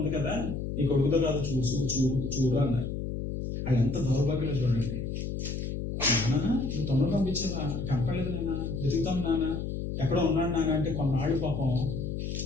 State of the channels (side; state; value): left; noise; hum, 4 dB below the sound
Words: కదా, నీ కొడుకుతో కాదు చూడు అన్నారు. వాళ్ళు ఎంత దౌర్భాగ్యంలో చూడండి. నాన్న నువ్వు తమ్ముడు పంపించావా? కనపడలేదు నాన్న, వెతుకుతాం నాన్న, ఎక్కడ ఉన్నాడు నాన్న అంటే కొన్నాళ్ళు పాపం